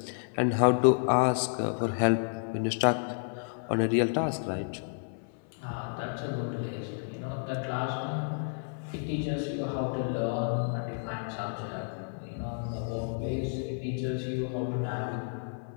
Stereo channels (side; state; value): right; silent; 57 dB below the other